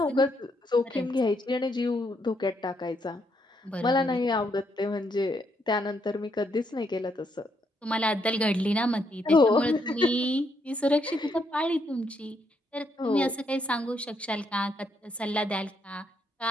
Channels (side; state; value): both; normal; correlation 0.75